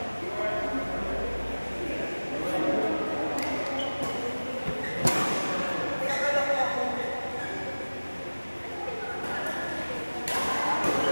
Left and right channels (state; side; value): inverted; both; correlation -1.00